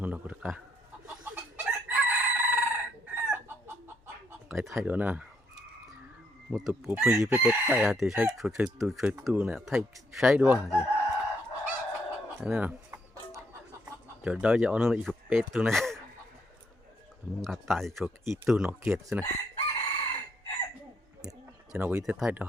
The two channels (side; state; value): both; normal; correlation 0.73